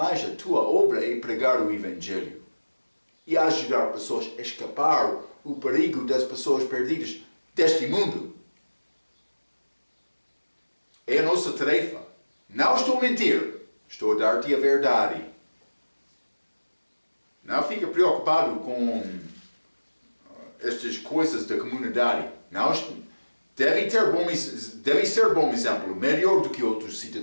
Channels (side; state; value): both; inverted; correlation -1.00